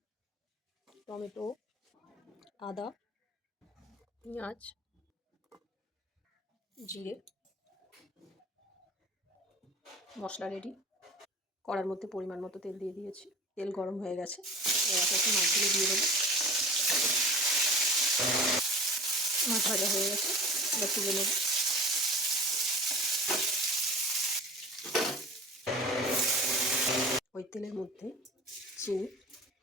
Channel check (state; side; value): normal; both; correlation 0.38